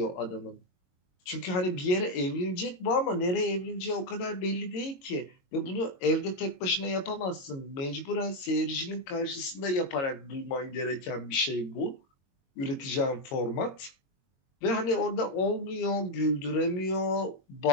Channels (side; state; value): right; late; 22 ms